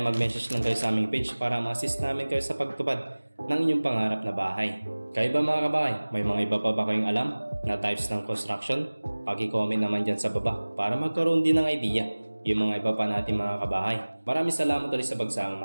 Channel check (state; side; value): inverted; both; correlation -1.00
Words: mag-message lang kayo sa aming page para ma-assist namin kayo sa pagtupad ng inyong pangarap na bahay. Kayo ba mga kabahay, may mga iba pa ba kayong alam na types ng construction? Paki-comment naman dyan sa baba para magkaroon din ng idea yung mga iba pa natin mga kabahay. Maraming salamat ulit sa